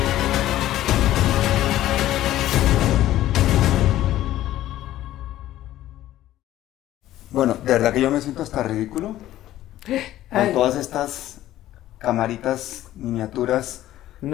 Bueno, de verdad que yo me siento hasta ridículo con todas estas camaritas miniaturas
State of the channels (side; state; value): right; quieter; 14.0 dB